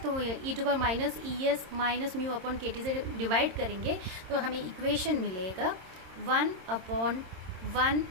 तो e to power minus es minus mu upon kt से डिवाइड करेंगे तो हमें इक्वेशन मिलेगा 1 अपॉन 1,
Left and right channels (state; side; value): late; left; 26 ms